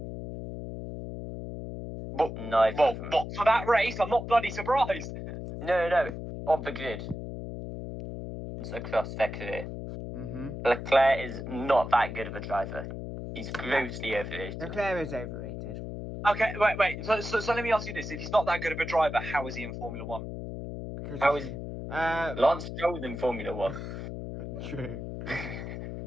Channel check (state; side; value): noise; left; hum, 7 dB below the sound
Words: But, Neither well, of them. but for that race, I'm not bloody surprised. No. Of the grid. It's across their career. Mm-hmm. Leclerc is not that good of a driver. He's grossly overrated. Leclerc is overrated. Okay, wait. So let me ask you this: if he's not that good of a driver, how is he in Formula One? Because How is Lance Stroll's in Formula 1. True. Then